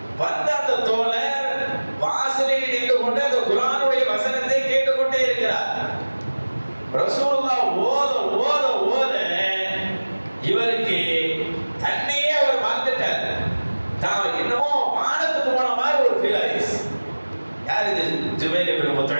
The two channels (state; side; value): inverted; both; correlation -1.00